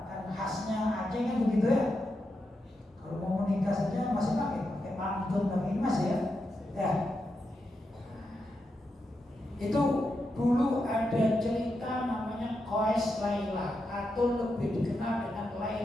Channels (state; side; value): normal; both; correlation 0.86